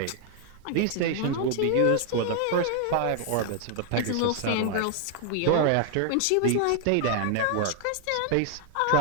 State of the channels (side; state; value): both; different; correlation 0.00